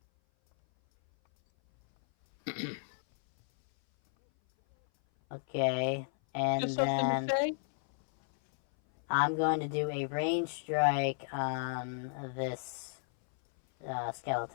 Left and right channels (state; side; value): silent; right; 56 dB below the other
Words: okay, and Just something to then say? I'm going to do a range strike on this